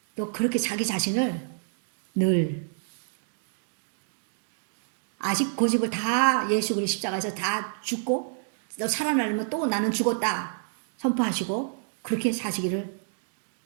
또 그렇게 자기 자신을 늘 아직 고집을 다 예수 그리스도 십자가에서 다 죽고 너 살아나려면 또 나는 죽었다 선포하시고 그렇게 사시기를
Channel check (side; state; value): left; silent; digital silence